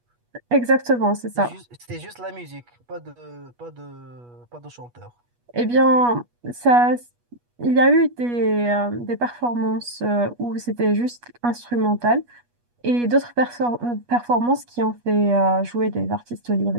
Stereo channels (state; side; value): late; left; 8.3 ms